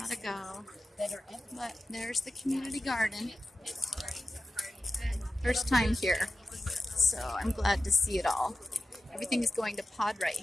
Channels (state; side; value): normal; both; correlation 0.94